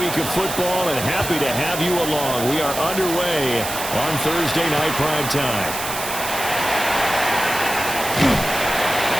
of football, and happy to have you along. We are underway on Thursday night prime time.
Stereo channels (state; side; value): noise; right; hiss, 6 dB below the sound